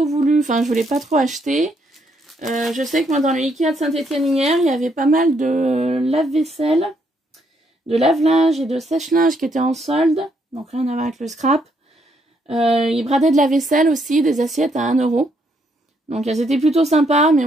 voulu, enfin je voulais pas trop acheter. Je sais que moi dans le Ikea de Saint-Étienne hier, il y avait pas mal de lave-vaisselle, de lave-linge et de sèche-linge qui étaient en solde, donc rien à voir avec le scrap. Ils bradaient de la vaisselle aussi, des assiettes à 1 €. Donc elles étaient plutôt sympas, mais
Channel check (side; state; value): both; normal; correlation 0.73